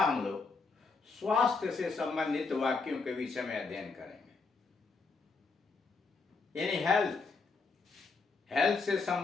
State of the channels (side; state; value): right; quieter; 4.3 dB